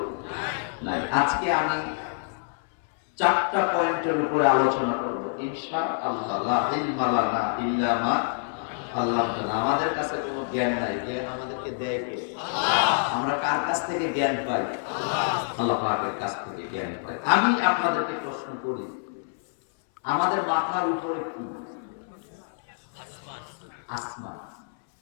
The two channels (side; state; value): right; silent; 60 dB below the other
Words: নাই। আজকে আমি 4টা পয়েন্টের উপরে আলোচনা করব ইনশাআল্লাহ। লা ইলমা লানা ইল্লা মা আল্লামানা। আমাদের কাছে কোনো জ্ঞান নাই, জ্ঞান আমাদেরকে দেয় কে? আমরা কার কাছ থেকে জ্ঞান পাই? আল্লাহ পাকের কাছ থেকে জ্ঞান পাই। আমি আপনাদেরকে প্রশ্ন করি, আমাদের মাথার উপরে কি? আসমান।